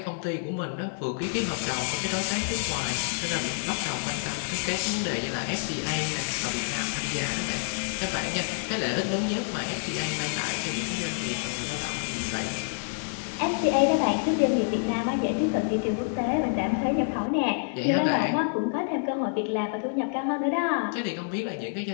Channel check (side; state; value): right; silent; 57 dB below the other